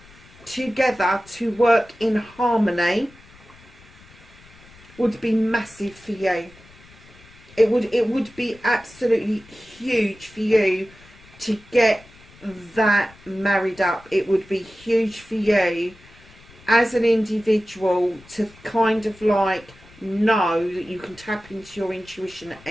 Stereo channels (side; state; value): left; noise; rumble, 24 dB below the sound